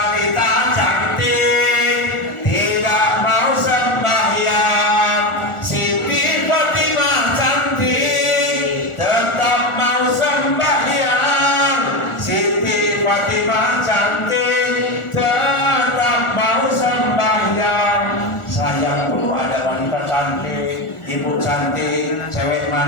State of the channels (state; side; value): late; right; 1.4 ms